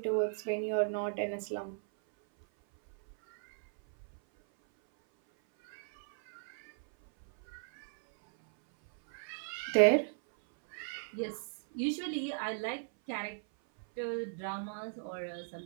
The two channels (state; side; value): silent; left; 54 dB below the other